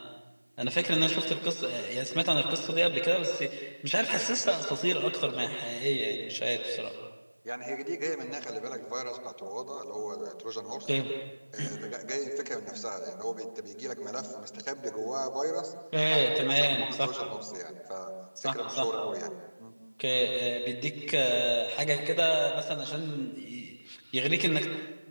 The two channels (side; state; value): both; inverted; correlation -1.00